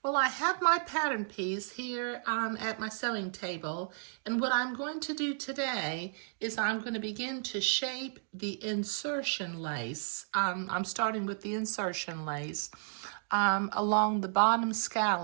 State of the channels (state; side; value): silent; left; digital silence